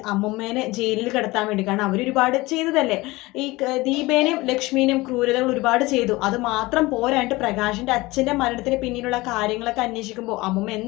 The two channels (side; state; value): right; quieter; 21.0 dB